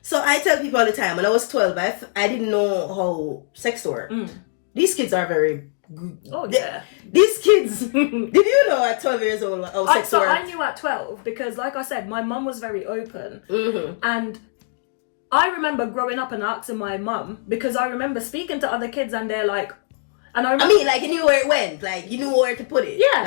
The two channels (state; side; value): silent; right; digital silence